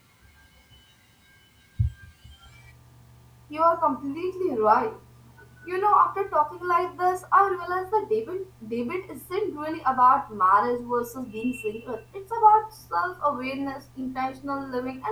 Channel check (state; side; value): identical; both; correlation 1.00